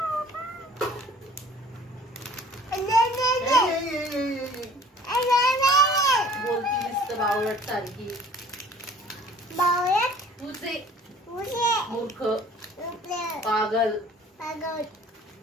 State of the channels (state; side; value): normal; both; correlation 0.51